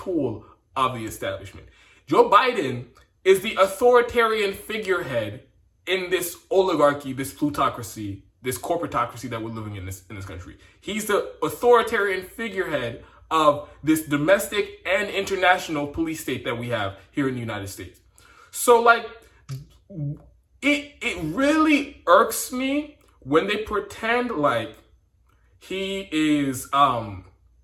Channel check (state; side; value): identical; both; correlation 1.00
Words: of the establishment. Joe Biden is the authoritarian figurehead in this oligarchy, this plutocracy, this corporatocracy that we're living in this country. He's the authoritarian figurehead of this domestic and international police state that we have here in the United States. So, like, it really irks me when they pretend like he is,